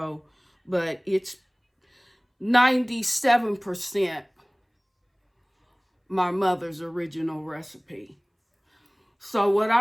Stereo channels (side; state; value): both; identical; correlation 1.00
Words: but it's 97% my mother's original recipe. So what